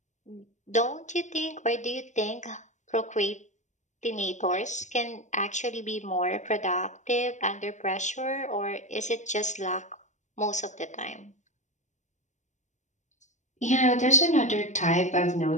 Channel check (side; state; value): right; late; 0.35 ms